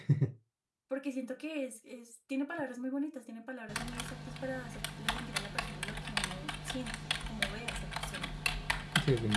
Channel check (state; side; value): identical; both; correlation 1.00